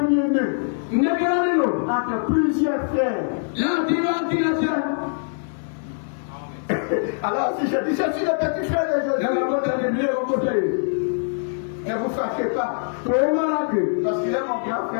entre plusieurs frères. Alors si je dis je suis le petit frère de Jésus, ne vous fâchez pas. Parce qu'il est mon grand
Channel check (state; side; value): silent; right; digital silence